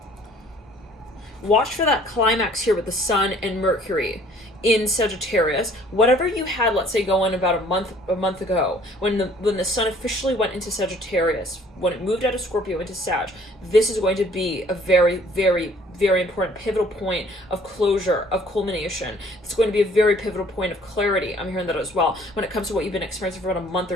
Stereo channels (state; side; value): normal; both; correlation 0.57